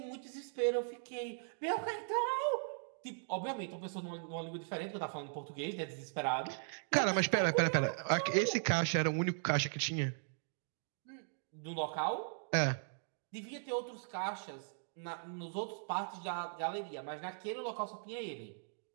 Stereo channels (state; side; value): silent; left; digital silence